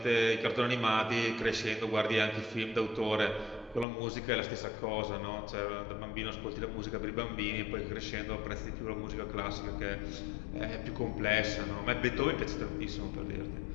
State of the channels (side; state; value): right; drops out; at 3.9 s